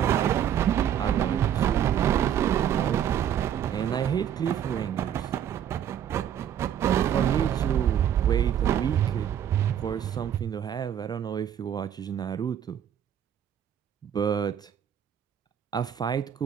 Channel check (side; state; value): left; quieter; 9.6 dB